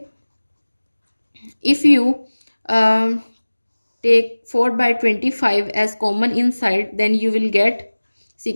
if you take 4 by 25 as common inside, then you will get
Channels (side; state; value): both; inverted; correlation -1.00